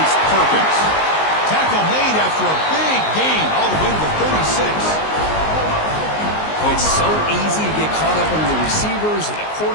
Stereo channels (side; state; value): right; late; 19 ms